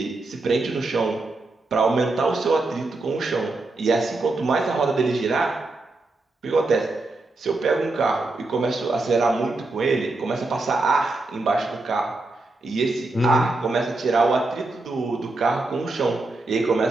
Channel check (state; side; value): quieter; left; 3.1 dB